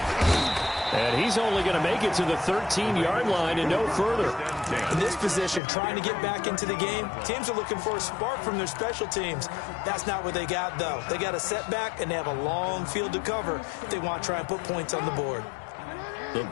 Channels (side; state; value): right; drops out; at 5.6 s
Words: And he's only going to make it to the 13-yard line and no further. In this position, trying to get back into the game, teams are looking for a spark from their special teams. That's not what they got, though. They got a setback, and they have a long field to cover if they want to try and put points on the board. The